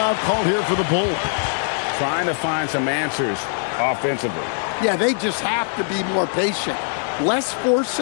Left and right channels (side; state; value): right; silent; digital silence